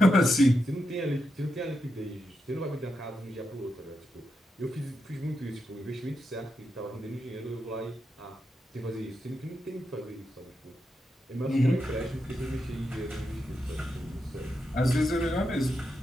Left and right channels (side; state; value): both; normal; correlation 0.86